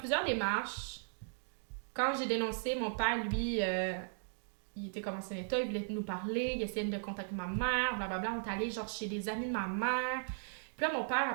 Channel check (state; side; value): silent; left; digital silence